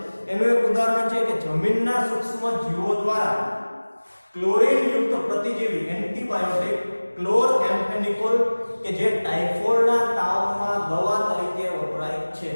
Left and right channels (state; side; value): inverted; both; correlation -1.00